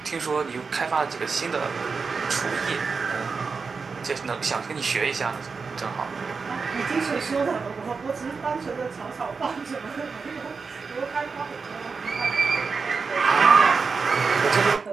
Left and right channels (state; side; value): quieter; left; 4.9 dB